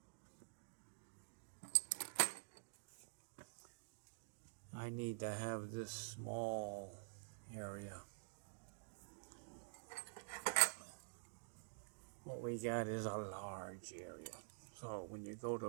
I need to have this small area. What we got is a large area. So when you go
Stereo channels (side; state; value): left; silent; digital silence